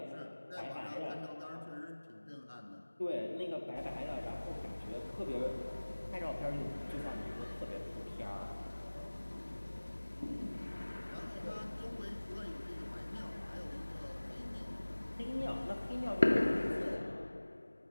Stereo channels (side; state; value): both; inverted; correlation -1.00